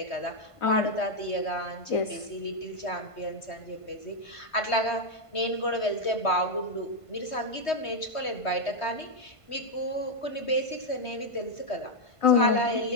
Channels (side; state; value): right; late; 1.5 ms